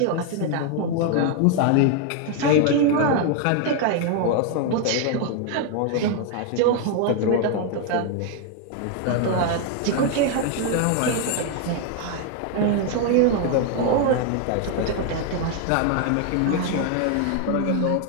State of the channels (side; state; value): both; different; correlation 0.00